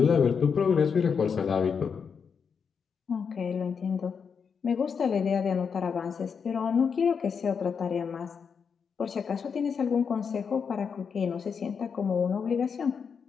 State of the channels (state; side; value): quieter; right; 6.3 dB